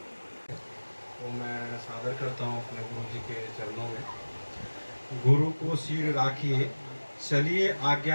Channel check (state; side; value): inverted; both; correlation -1.00